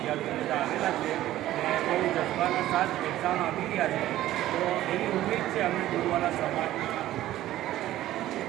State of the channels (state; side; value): quieter; left; 14.3 dB